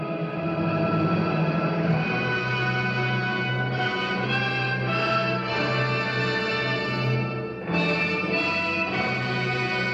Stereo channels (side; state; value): both; identical; correlation 1.00